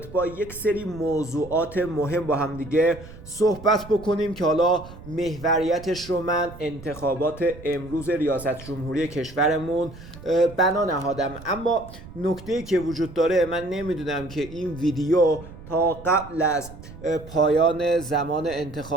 با یک سری موضوعات مهم با هم دیگه صحبت بکنیم که حالا محوریتش رو من انتخابات امروز ریاست جمهوری کشورمون بنا نهادم. اما نکته‌ای که وجود داره، من نمیدونم که این ویدیو تا قبل از پایان زمان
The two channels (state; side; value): noise; right; rumble, 17 dB below the sound